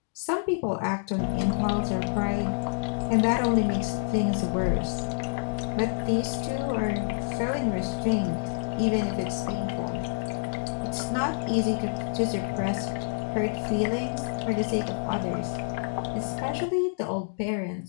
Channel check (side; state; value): right; silent; digital silence